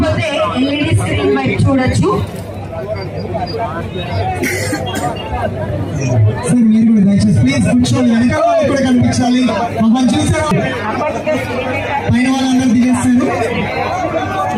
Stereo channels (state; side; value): identical; both; correlation 1.00